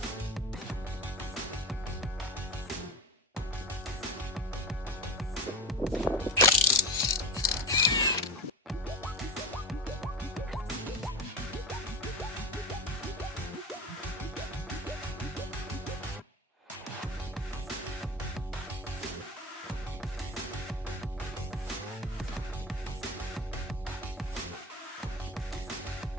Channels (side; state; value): both; normal; correlation 0.25